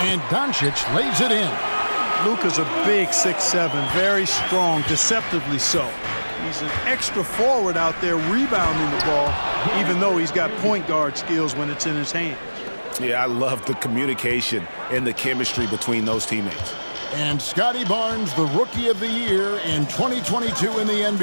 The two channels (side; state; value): both; inverted; correlation -1.00